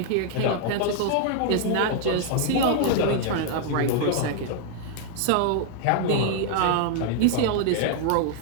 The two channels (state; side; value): different; both; correlation 0.00